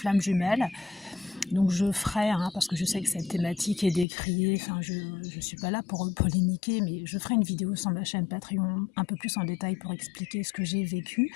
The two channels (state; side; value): drops out; right; at 4.0 s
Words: jumelle. Donc je ferai, parce que je sais que cette thématique est décriée, je ne suis pas là pour polémiquer, mais je ferai une vidéo sur ma chaîne Patreon un peu plus en détail pour expliquer ce que j'ai vécu,